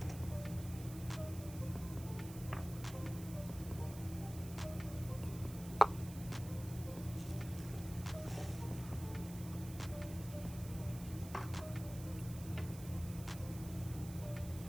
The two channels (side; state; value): right; noise; hiss, 15 dB below the sound